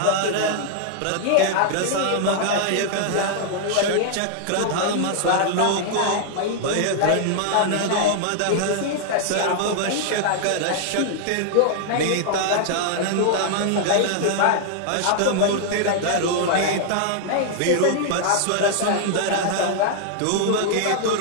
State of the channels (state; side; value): different; both; correlation -0.01